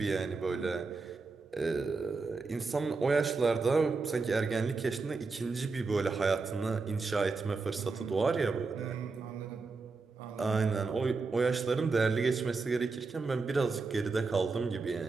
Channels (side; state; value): left; quieter; 4.2 dB